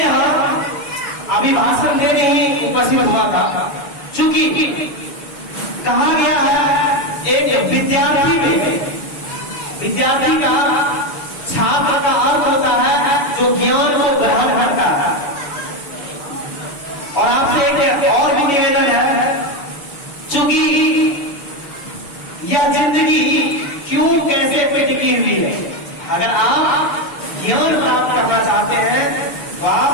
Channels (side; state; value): right; late; 6.6 ms